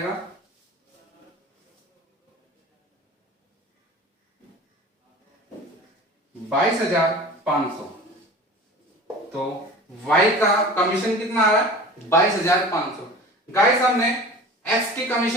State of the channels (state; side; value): normal; both; correlation 0.39